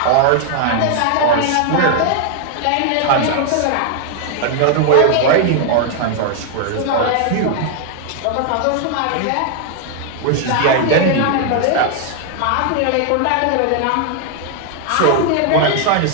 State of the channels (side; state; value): both; different; correlation 0.00